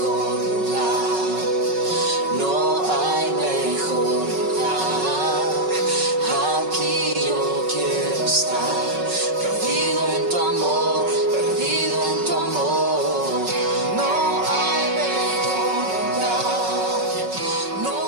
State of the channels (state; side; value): late; left; 5.3 ms